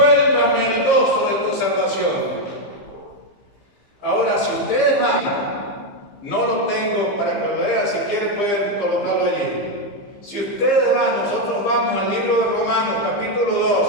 el gozo de tu salvación. Ahora, si ustedes van, no lo tengo para que lo vean, si quieren pueden colocarlo allí. Si ustedes van, nosotros vamos al libro de Romanos, capítulo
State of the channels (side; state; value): right; late; 15 ms